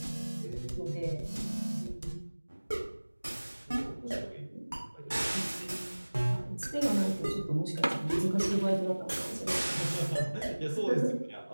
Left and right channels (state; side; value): inverted; both; correlation -1.00